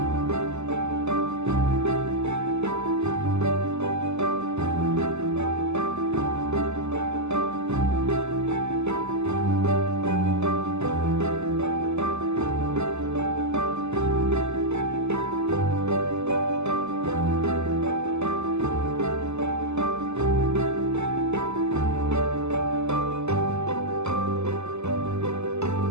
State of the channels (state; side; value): late; left; 0.82 ms